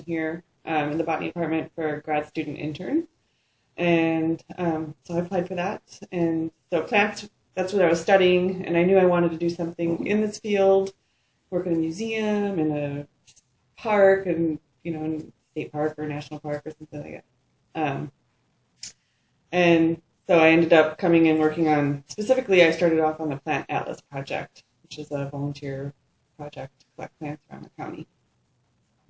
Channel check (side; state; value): both; identical; correlation 1.00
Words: here in the botany department for a grad student intern. And so I applied for that. And so plants, that's what I was studying, and I knew I wanted to do something in this field, work in a museum, in a park, and, in a state park or a national park or something like that. And so I ended up coming and working on, specifically, I started off on the Plant Atlas Project, which is a volunteer project to collect plants around the county.